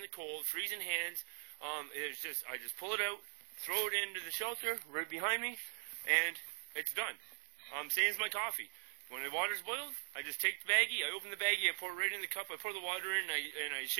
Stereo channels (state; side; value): silent; left; 51 dB below the other